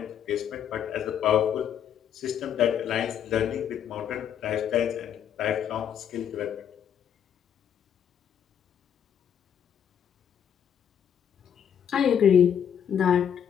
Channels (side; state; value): right; quieter; 8.8 dB